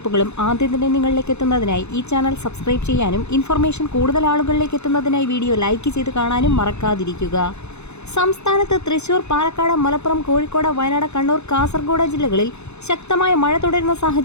ആദ്യം തന്നെ നിങ്ങളിലേക്ക് എത്തുന്നതിനായി ഈ ചാനൽ സബ്സ്ക്രൈബ് ചെയ്യാനും ഇൻഫർമേഷൻ കൂടുതൽ ആളുകളിലേക്ക് എത്തുന്നതിനായി വീഡിയോ ലൈക്ക് ചെയ്ത് കാണാനും മറക്കാതിരിക്കുക. സംസ്ഥാനത്ത് തൃശൂർ, പാലക്കാട്, മലപ്പുറം, കോഴിക്കോട്, വയനാട്, കണ്ണൂർ, കാസർഗോഡ് ജില്ലകളിൽ ശക്തമായ മഴ തുടരുന്ന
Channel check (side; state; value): right; late; 0.81 ms